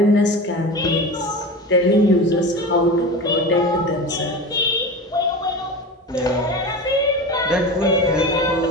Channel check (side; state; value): both; normal; correlation 0.29